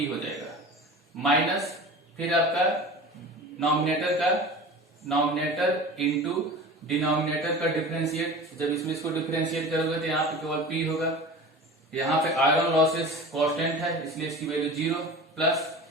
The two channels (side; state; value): both; normal; correlation 0.36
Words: हो जाएगा, माइनस फिर आपका नॉमिनेटर इंटू डिनोमिनेटर का डिफरेंशिएट, जब इसमें इसको डिफरेंशिएट करोगे तो यहाँ पे केवल पी होगा। यहाँ पे आयरन लॉसेस कांस्टेंट है इसलिए इसकी वैल्यू 0, प्लस